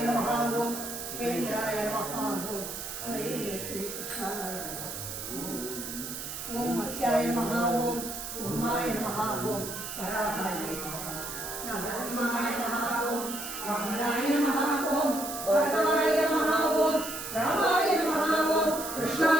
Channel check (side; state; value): right; noise; hiss, 7 dB below the sound